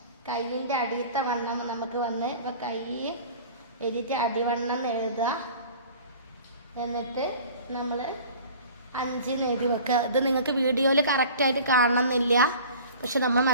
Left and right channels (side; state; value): both; inverted; correlation -0.43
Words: കൈയിൻ്റെ അടിയത്തെ വണ്ണം നമുക്ക് വന്ന് ഇപ്പോൾ കൈ എഴുതിയിട്ട് അടിവണ്ണം എഴുതുക. എന്നിട്ട് നമ്മൾ 5 എഴുതി വെക്കുക. ഇത് നിങ്ങൾക്ക് വീഡിയോയിൽ കറക്റ്റായിട്ട് കാണണമെന്നില്ല, പക്ഷെ നമ്മൾ